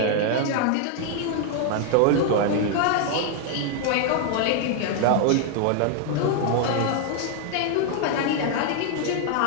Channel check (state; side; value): different; both; correlation 0.00